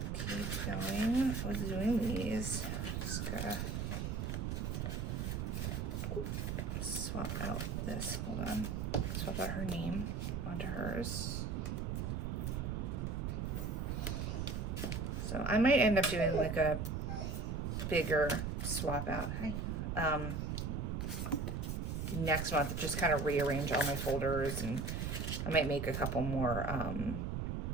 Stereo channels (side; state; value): right; noise; rumble, 2 dB below the sound